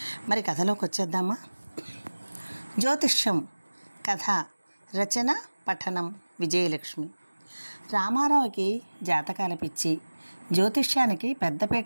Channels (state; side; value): inverted; both; correlation -1.00